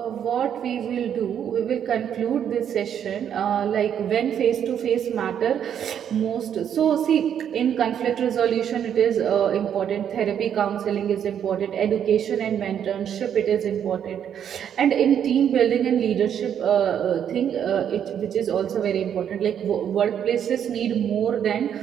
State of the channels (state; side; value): quieter; left; 9.0 dB